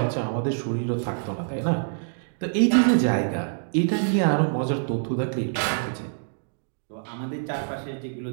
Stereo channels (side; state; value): left; silent; digital silence